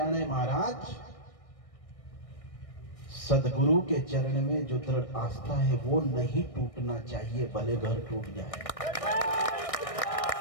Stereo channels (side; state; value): right; late; 1.6 ms